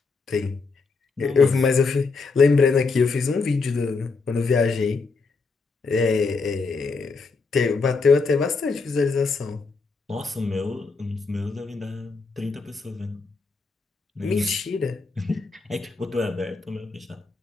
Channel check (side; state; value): right; quieter; 4.3 dB